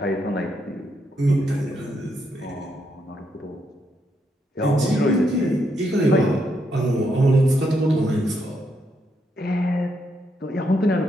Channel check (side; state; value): both; normal; correlation 0.78